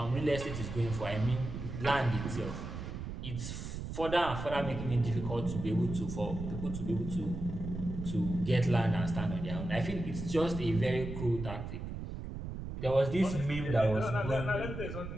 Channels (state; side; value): noise; right; rumble, 7 dB below the sound